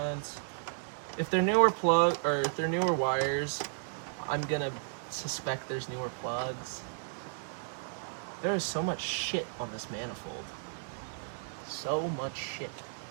If they're newer if they're newer wires, I'm gonna suspect there's newer plugs. There is so much shit on this manifold. So much shit.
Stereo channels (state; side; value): silent; left; digital silence